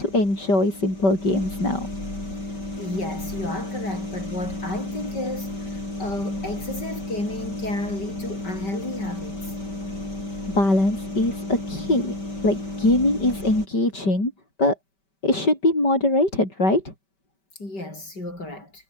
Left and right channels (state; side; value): late; right; 5.2 ms